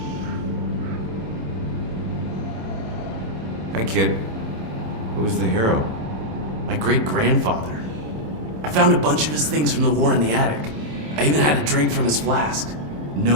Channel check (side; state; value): left; late; 27 ms